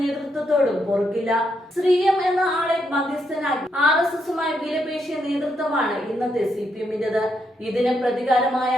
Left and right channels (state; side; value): normal; both; correlation 0.79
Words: പൊറുക്കില്ല. ശ്രീയം എന്ന ആളെ മധ്യസ്ഥനാക്കി RSSുമായി വിലപേശിയ നേതൃത്വമാണ് ഇന്നത്തെ CPMന്റേത്. ഇതിന്